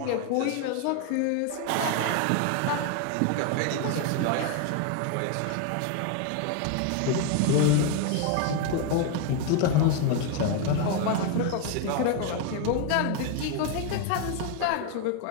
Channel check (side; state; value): both; different; correlation 0.01